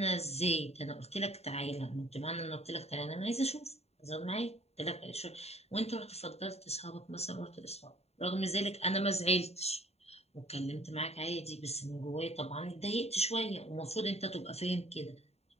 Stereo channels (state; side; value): late; right; 0.30 ms